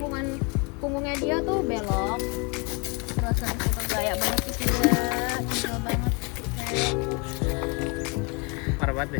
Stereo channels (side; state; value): right; quieter; 30.1 dB